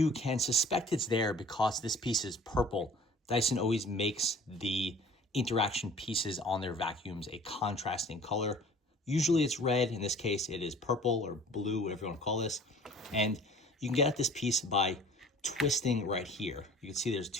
can suspect it's there because this piece is purple. Dyson always makes the interaction pieces on their vacuums a contrasting color. Usually it's red. In this case, it is purple or blue, whatever you want to call this. And you can get at this piece by twisting right here. You can see there's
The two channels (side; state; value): both; normal; correlation 0.48